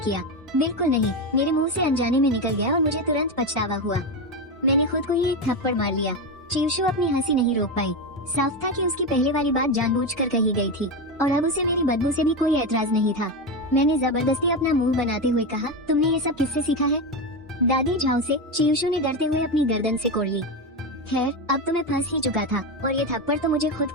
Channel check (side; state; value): both; normal; correlation 0.14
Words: बिल्कुल नहीं, मेरे मुंह से अनजाने में निकल गया और मुझे तुरंत पछतावा हुआ। मैंने खुद को ही एक थप्पड़ मार लिया। चियुशु अपनी हंसी नहीं रोक पाई। साफ था कि उसकी पहले वाली बात जानबूझकर कही गई थी और अब उसे मेरी बदबू से भी कोई एतराज नहीं था। मैंने जबरदस्ती अपना मुंह बनाते हुए कहा, तुमने ये सब किससे सीखा है? दादी झाओ से। चियुशु ने डरते हुए अपनी गर्दन से कोड़ ली। खैर, अब तो मैं फंस ही चुका था और ये थप्पड़ तो मुझे खुद